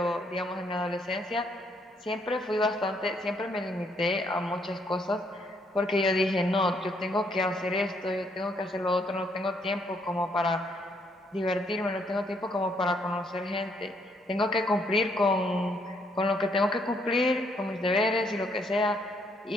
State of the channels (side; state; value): both; normal; correlation 0.71